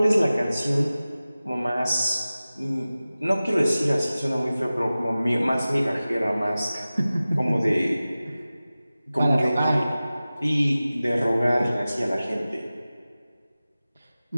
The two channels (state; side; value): inverted; both; correlation -0.96